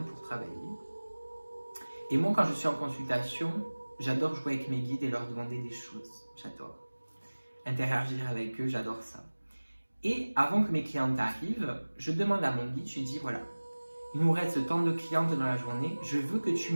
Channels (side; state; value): both; inverted; correlation -1.00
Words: pour travailler. Et moi quand je suis en consultation, j'adore jouer avec mes guides et leur demander des choses. J'adore. Interagir avec eux, j'adore ça. Et avant que mes clientes arrivent, je demande à mon guide, je lui dis voilà, il nous reste tant de clientes dans la journée, je veux que tu